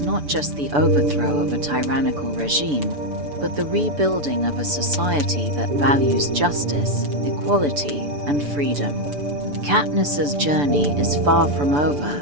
not just the overthrow of a tyrannical regime, but the rebuilding of a society that values justice, equality, and freedom. Katniss's journey is far from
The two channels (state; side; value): late; left; 6.9 ms